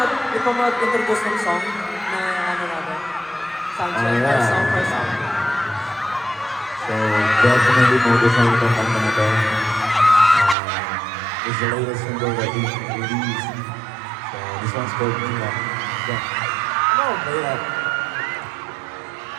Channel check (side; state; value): left; drops out; at 10.6 s